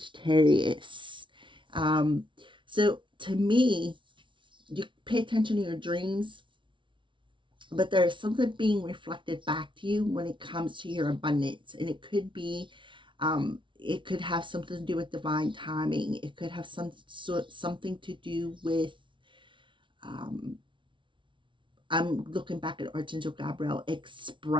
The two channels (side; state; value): left; late; 0.24 ms